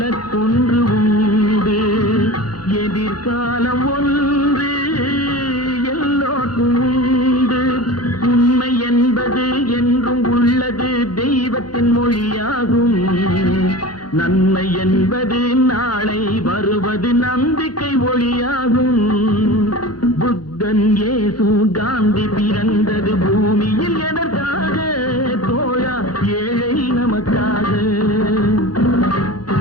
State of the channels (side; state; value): right; late; 0.70 ms